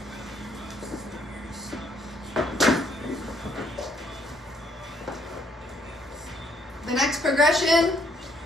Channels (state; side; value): normal; both; correlation 0.68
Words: The next progression